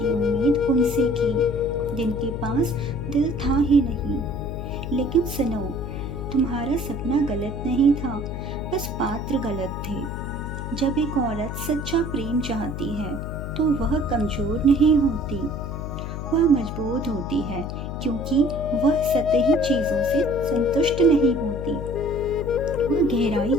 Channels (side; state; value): left; noise; hum, 6 dB below the sound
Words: उम्मीद उनसे की, जिनके पास दिल था ही नहीं। लेकिन सुनो, तुम्हारा सपना गलत नहीं था, बस पात्र गलत थे। जब एक औरत सच्चा प्रेम चाहती है तो वह कमजोर नहीं होती, वह मजबूत होती है, क्योंकि वह सतही चीजों से संतुष्ट नहीं होती। वह गहराई